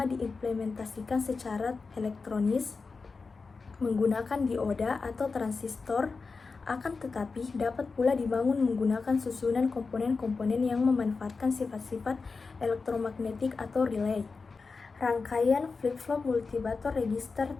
diimplementasikan secara elektronis menggunakan dioda atau transistor, akan tetapi dapat pula dibangun menggunakan susunan komponen-komponen yang memanfaatkan sifat-sifat elektromagnetik atau relay. Rangkaian flip-flop, multibator, register,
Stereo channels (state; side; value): quieter; right; 4.4 dB